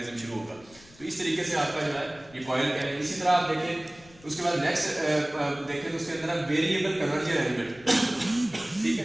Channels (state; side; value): noise; left; rumble, 24 dB below the sound